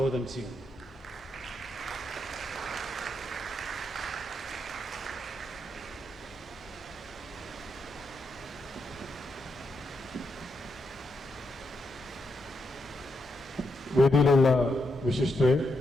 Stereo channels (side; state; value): both; normal; correlation 0.82